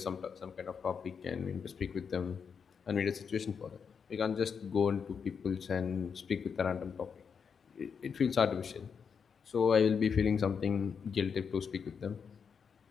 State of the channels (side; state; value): right; quieter; 6.4 dB